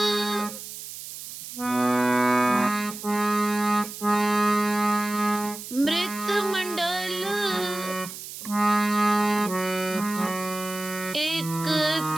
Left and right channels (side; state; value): right; noise; hiss, 11 dB below the sound